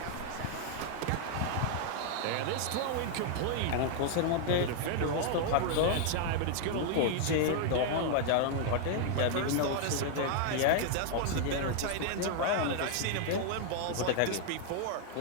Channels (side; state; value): both; different; correlation 0.00